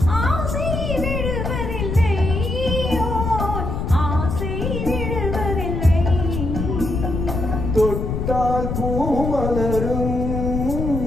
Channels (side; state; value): left; noise; rumble, 3 dB below the sound